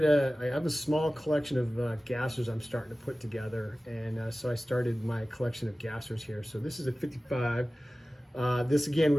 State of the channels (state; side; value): normal; both; correlation 0.97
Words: have a small collection of gassers I'm starting to put together. And so I started my collection of gassers here. So this is a 55. This again